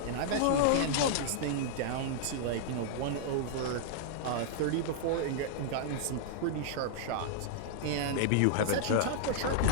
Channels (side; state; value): both; different; correlation -0.01